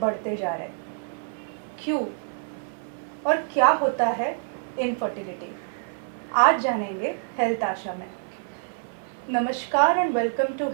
जा रहे हैं। क्यों और क्या होता है इनफर्टिलिटी, आज जानेंगे हेल्थ आशा में। नमस्कार एंड वेलकम टू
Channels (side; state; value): left; silent; digital silence